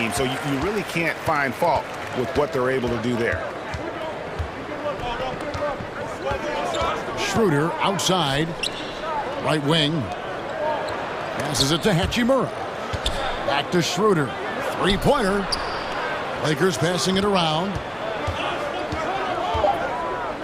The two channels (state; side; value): identical; both; correlation 1.00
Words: So you really can't find fault with what they're able to do there. Schroeder outside. Right wing. Passes it to Hachimura. Back to Schroeder. Three-pointer. Lakers passing it around.